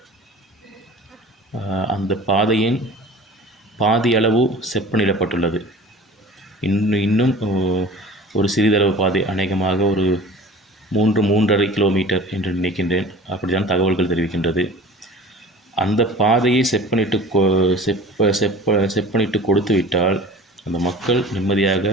அந்த பாதையின் பாதி அளவு செப்பனிடப்பட்டுள்ளது. இன்னும் ஒரு சிறிதளவு பாதை, அநேகமாக ஒரு 3-3.5 கிலோமீட்டர் என்று நினைக்கின்றேன், அப்படித்தான் தகவல்கள் தெரிவிக்கின்றது. அந்த பாதையை செப்பனிட்டு கொடுத்துவிட்டால் அந்த மக்கள் நிம்மதியாக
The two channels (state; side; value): normal; both; correlation 0.42